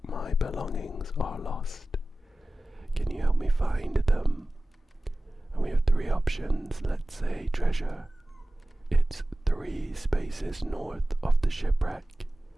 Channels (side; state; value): both; normal; correlation 0.96